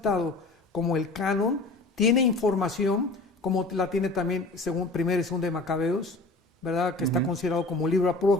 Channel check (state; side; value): quieter; right; 3.2 dB